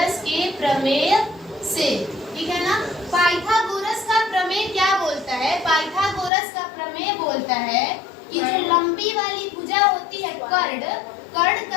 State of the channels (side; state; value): right; drops out; at 6.3 s